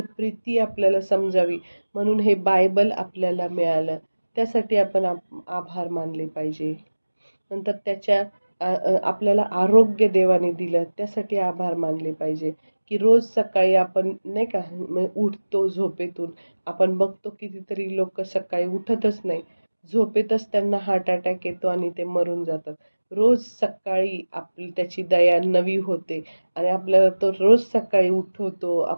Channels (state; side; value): inverted; both; correlation -1.00